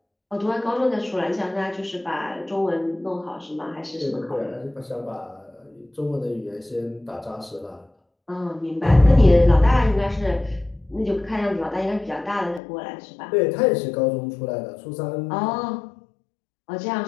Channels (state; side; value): drops out; right; at 12.6 s